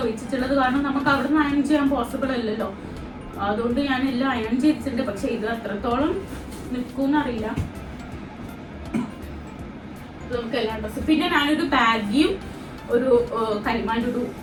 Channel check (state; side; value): identical; both; correlation 1.00